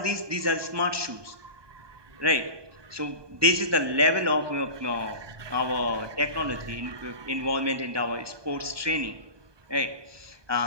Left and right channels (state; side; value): late; left; 1.2 ms